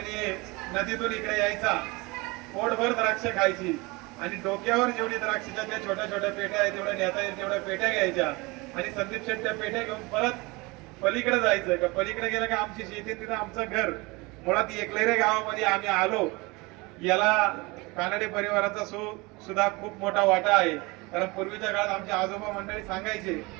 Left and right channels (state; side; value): quieter; left; 24.8 dB